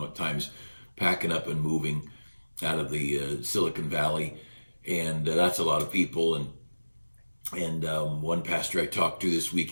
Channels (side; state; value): both; inverted; correlation -1.00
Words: times, packing up and moving out of the Silicon Valley, and that's a lot of people. And one pastor I talked to this week,